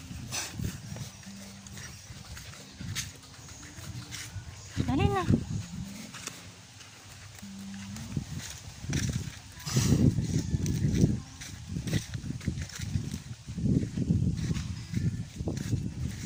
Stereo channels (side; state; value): both; identical; correlation 1.00